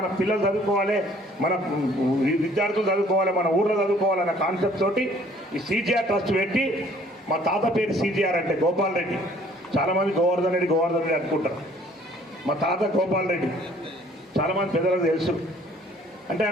పిల్లలు చదువుకోవాలి, మన విద్యార్థులు చదువుకోవాలి, మన ఊర్లో చదువుకోవాలన్న కాన్సెప్ట్ తోటి ఈ సీజీఆర్ ట్రస్ట్ పెట్టి, మా తాత పేరు సీజీఆర్ అంటే గోపాల్ రెడ్డి. చాలామంది గోవర్ధన్ రెడ్డి అనుకుంటారు. మా తాత గోపాల్ రెడ్డి చాలామంది పెద్దలకు తెలుసు. అంటే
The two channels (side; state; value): both; normal; correlation 0.57